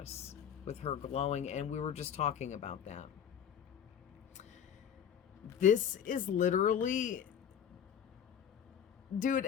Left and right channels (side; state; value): right; quieter; 8.7 dB